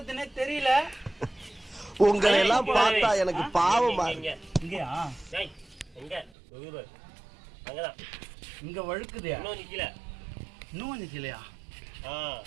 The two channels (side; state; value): left; drops out; at 6.3 s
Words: தெரியல. உங்களை எல்லாம் பார்த்தா எனக்கு பாவமா. இங்கயா இங்க வழுக்குதா? இன்னும் கொஞ்சம் கீழயா?